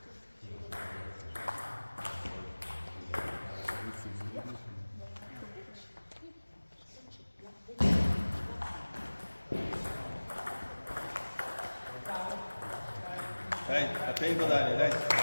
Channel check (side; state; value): both; inverted; correlation -1.00